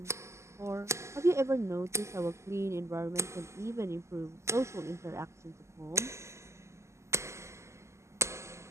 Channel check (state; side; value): late; left; 0.13 ms